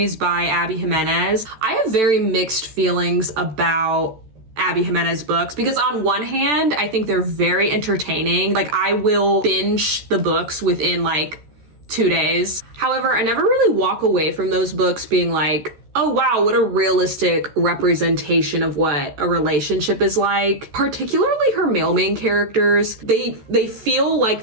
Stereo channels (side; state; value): left; late; 14 ms